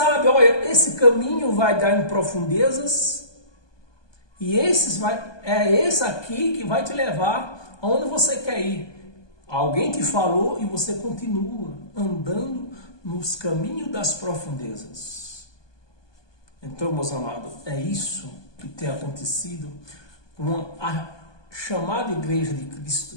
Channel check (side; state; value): right; late; 1.2 ms